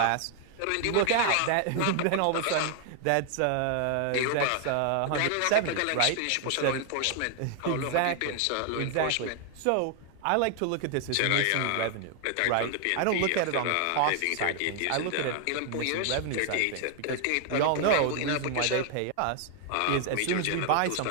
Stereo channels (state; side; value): different; both; correlation 0.00